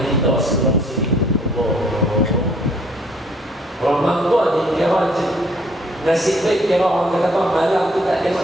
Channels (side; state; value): both; normal; correlation 0.62